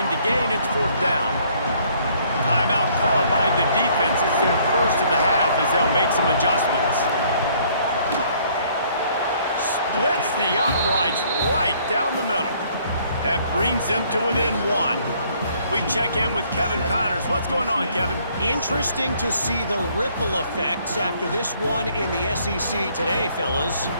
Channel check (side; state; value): both; inverted; correlation -0.63